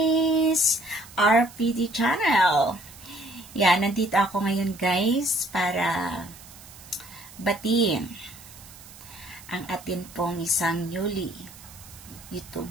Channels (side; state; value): right; noise; hiss, 19 dB below the sound